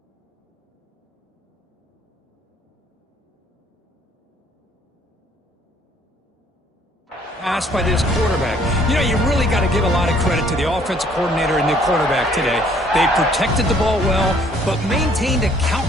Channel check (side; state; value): both; normal; correlation 0.61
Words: pass by this quarterback. You know, you really got to give a lot of credit to the offensive coordinator and the quarterback today. They protected the ball well, but maintained a